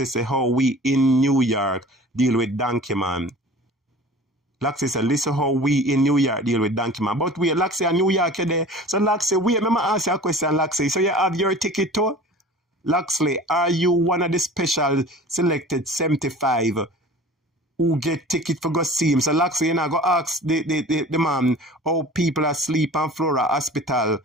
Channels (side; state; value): both; normal; correlation 0.42